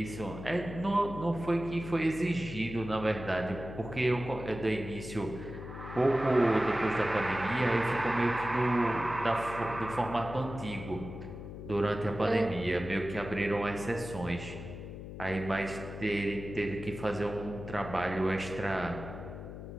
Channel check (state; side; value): noise; left; hum, 10 dB below the sound